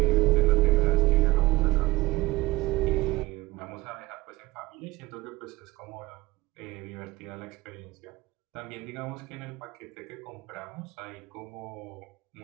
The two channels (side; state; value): left; quieter; 19.9 dB